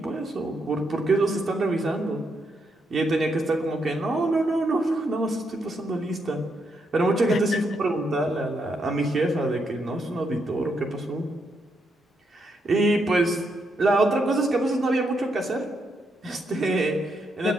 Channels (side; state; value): both; normal; correlation 0.79